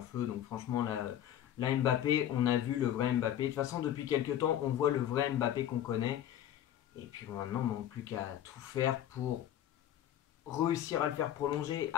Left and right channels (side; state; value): right; quieter; 11.3 dB